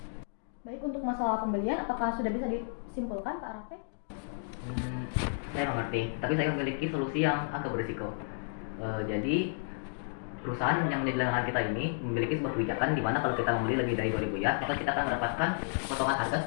Baik, untuk masalah pembelian, apakah sudah bisa disimpulkan, Pak Raffi? Saya mengerti, tapi saya memiliki solusi yang agak berisiko. Jadi perusahaan yang di belakang kita ini memiliki sebuah kebijakan di mana kalau kita membeli lebih dari 2.000 ya, maka kita akan mendapatkan potongan harga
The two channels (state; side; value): silent; right; digital silence